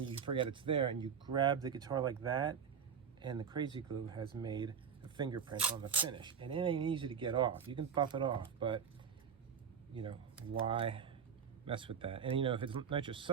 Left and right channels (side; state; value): left; quieter; 7.2 dB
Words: you forget it's there and you grab the guitar like that, and the Crazy Glue has made a fingerprint on the finish. And it ain't easy to get off. You can buff it off, but why mess with that? And if it's